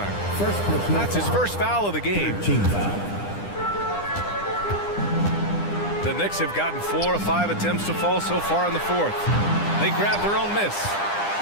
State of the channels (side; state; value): right; late; 9.9 ms